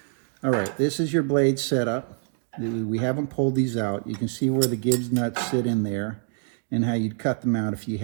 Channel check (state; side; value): silent; left; 56 dB below the other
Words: All right, this is your blade setup. We haven't pulled these out. You can see where the Gibbs nuts sit in there and how you'd cut them out if you